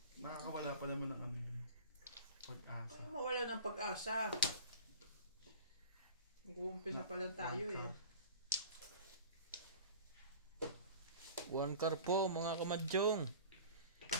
makakawala pa naman ng ano yun. Pag-asa. Ay, mawala ng pag-asa. Mag-uumpisa pa lang tayo eh. One car po mga kamadyong.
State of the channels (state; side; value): inverted; both; correlation -0.39